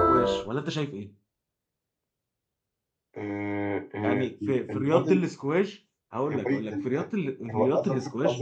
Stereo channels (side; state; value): both; identical; correlation 1.00